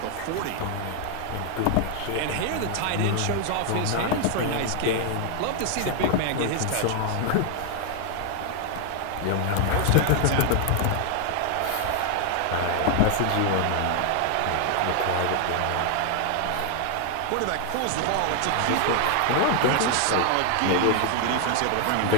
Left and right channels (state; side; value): different; both; correlation 0.00